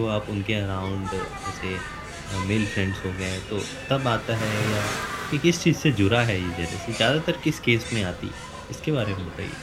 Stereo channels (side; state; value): both; identical; correlation 1.00